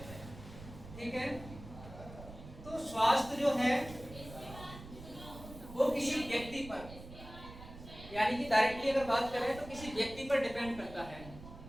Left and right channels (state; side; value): noise; right; rumble, 14 dB below the sound